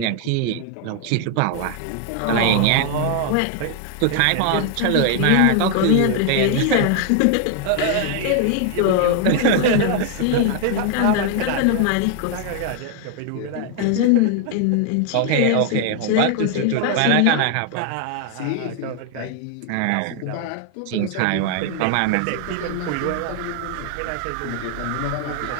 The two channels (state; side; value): different; both; correlation 0.00